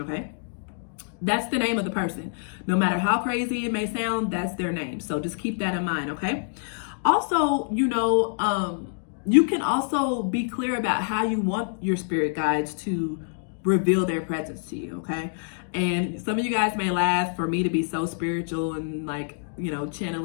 That's the name of the person. No matter how crazy it may sound, that's their name. So just keep that in mind, okay? Also, you can also be clear about how you want your spirit guides to reveal their presence to you, okay? And some of you guys may laugh for me to be so spiritual and like,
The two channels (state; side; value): silent; right; digital silence